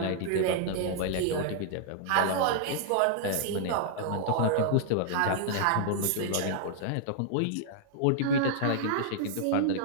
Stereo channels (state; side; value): different; both; correlation -0.01